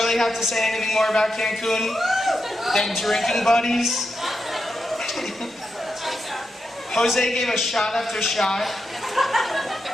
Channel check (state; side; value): normal; both; correlation 0.86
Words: have to say anything more about Cancun than drinking buddies? Jose gave us shot after shot.